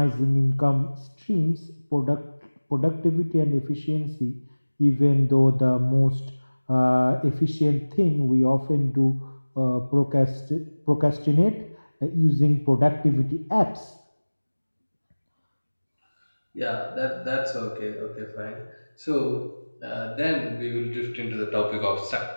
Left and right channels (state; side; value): inverted; both; correlation -1.00